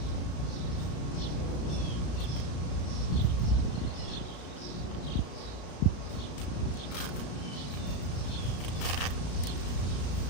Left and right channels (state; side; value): late; right; 34 ms